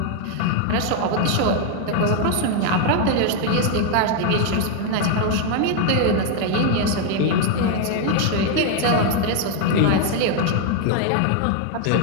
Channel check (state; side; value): different; both; correlation 0.01